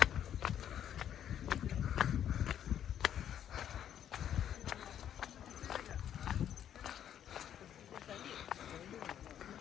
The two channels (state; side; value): quieter; right; 10.0 dB